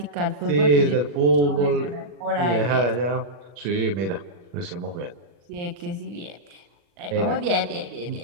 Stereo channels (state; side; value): late; left; 40 ms